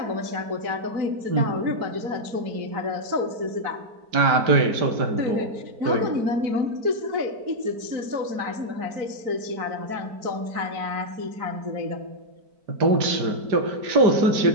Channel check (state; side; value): late; left; 4.5 ms